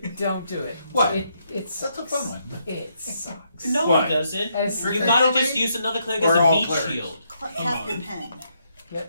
Don't do it. What? It's That's a fun one. It sucks. no What? one doesn't. As You Trickery gotta domain? just use another cleric Or as a all meat clerics? shield. Captain Pen.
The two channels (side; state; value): both; inverted; correlation -0.76